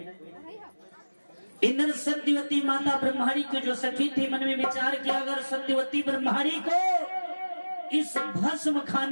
इधर सत्यवती माता ब्रह्मणी की जो सखी थी मन में विचार किया, अगर सत्यवती ब्रह्मणी को इस भस्म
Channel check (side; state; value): both; inverted; correlation -1.00